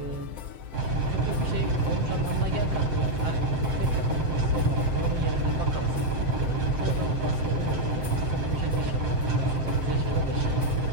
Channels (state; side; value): late; left; 7.7 ms